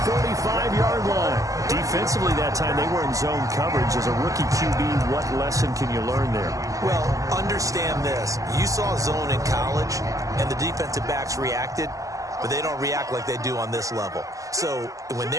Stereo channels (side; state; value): left; late; 0.16 ms